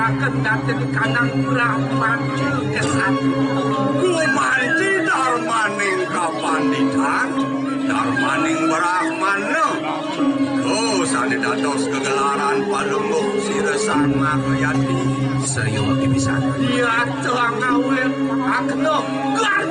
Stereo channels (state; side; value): identical; both; correlation 1.00